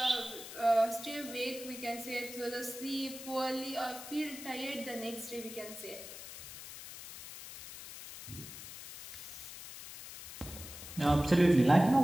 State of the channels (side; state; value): left; noise; hiss, 12 dB below the sound